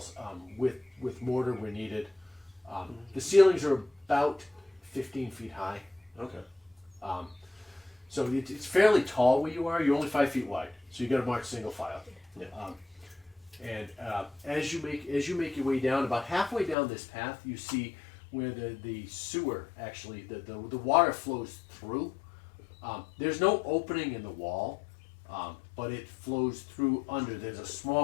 with mortar where needed. The ceilings are about 15 feet high. Okay. So it's fairly tall where you are. You're only 5 feet wide, so you got to march single file. Yeah. And as you make your way down, about halfway down this path, you see where the sewer actually the water flows through. There's no opening in the wall, but it flows through under. There's a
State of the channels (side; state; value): right; drops out; at 16.8 s